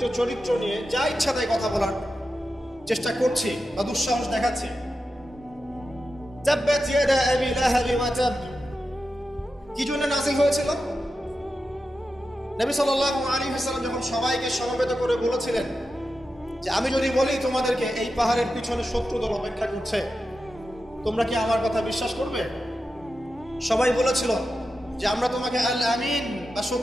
চরিত্র নিয়ে যা ইচ্ছা তাই কথা বলার চেষ্টা করছি বা দুঃসাহস দেখাচ্ছি। তাব্বাত ইয়াদা আবি লাহাব ওয়া তাব কি জন্য নাযিল হয়েছিল? নবী সাল্লাল্লাহু আলাইহি ওয়াসাল্লাম যখন সবাইকে সমবেত করে বলেছিলেন যে আমি যদি বলি তোমাদেরকে এই পাহাড়ের পিছনে 70 দল অপেক্ষা করছে, তোমরা কি আমার কথা বিশ্বাস করবে? সবাই বলেছিল যে আমরা তোমাকে আল আমিন বা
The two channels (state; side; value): normal; both; correlation 0.91